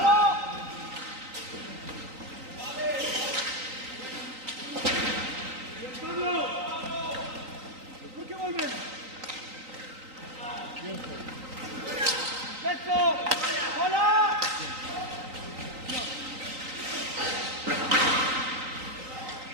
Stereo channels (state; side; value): late; left; 3.9 ms